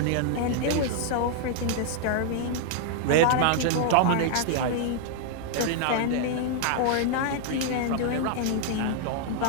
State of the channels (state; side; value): different; both; correlation -0.01